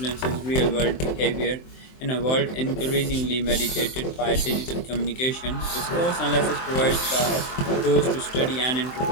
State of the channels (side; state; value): right; late; 23 ms